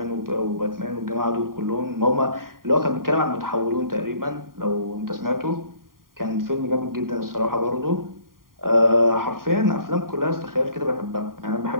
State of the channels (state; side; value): late; left; 0.91 ms